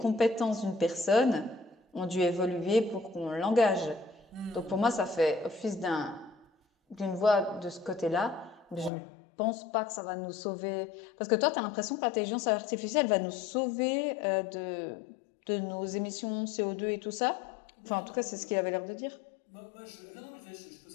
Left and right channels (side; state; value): right; drops out; at 8.9 s